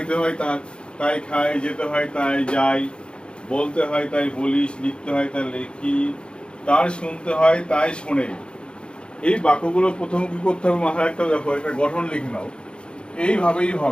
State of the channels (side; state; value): right; late; 0.054 ms